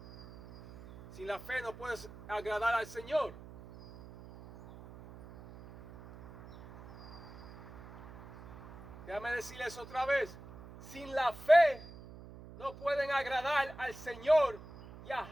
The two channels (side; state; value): right; noise; hum, 17 dB below the sound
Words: Sin la fe no puedes agradar al Señor. Déjame decirles otra vez. Sin la fe no pueden agradar al Señor